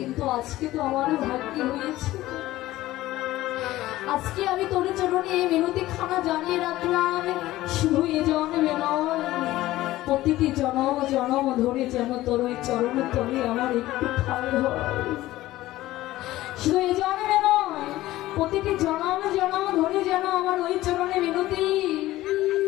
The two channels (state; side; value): quieter; right; 16.2 dB